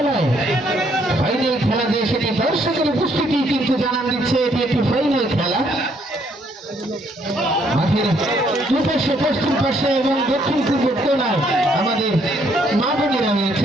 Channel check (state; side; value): normal; both; correlation 0.69